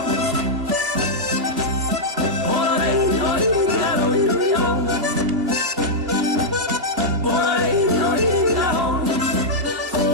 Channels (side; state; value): left; late; 2.6 ms